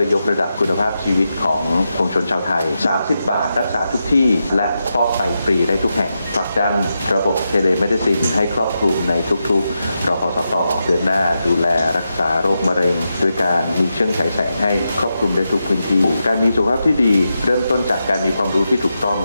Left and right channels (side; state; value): both; inverted; correlation -0.87